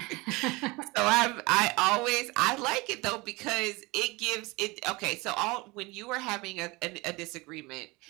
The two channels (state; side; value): quieter; left; 23.9 dB